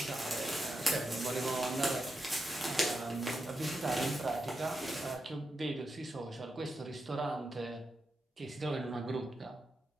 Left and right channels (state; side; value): normal; both; correlation 0.87